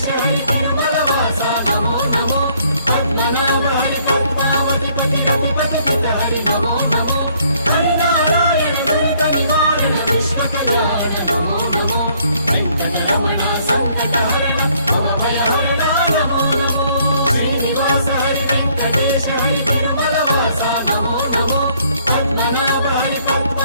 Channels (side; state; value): both; inverted; correlation -0.64